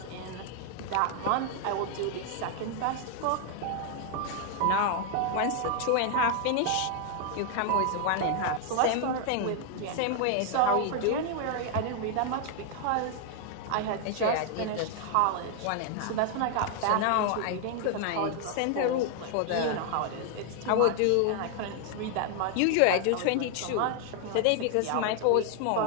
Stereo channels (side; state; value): both; different; correlation 0.00